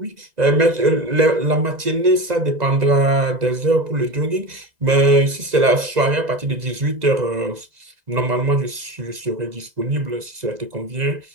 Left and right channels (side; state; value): left; late; 2.0 ms